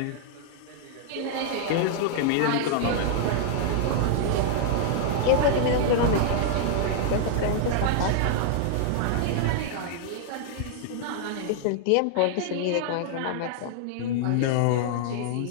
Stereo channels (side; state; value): both; different; correlation -0.01